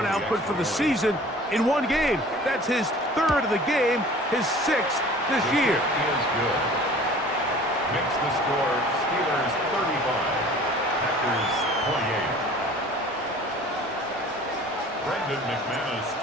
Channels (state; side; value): normal; both; correlation 0.46